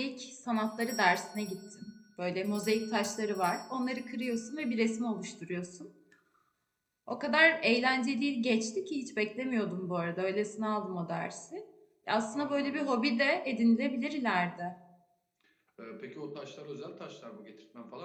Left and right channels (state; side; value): identical; both; correlation 1.00